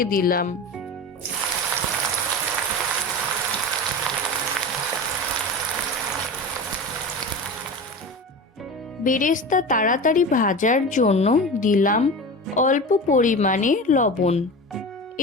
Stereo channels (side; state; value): both; normal; correlation 0.29